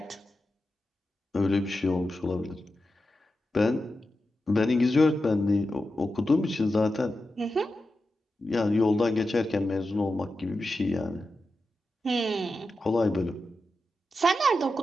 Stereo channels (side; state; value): both; normal; correlation 0.90